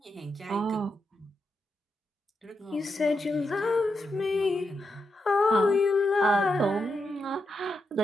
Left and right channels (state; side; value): normal; both; correlation 0.85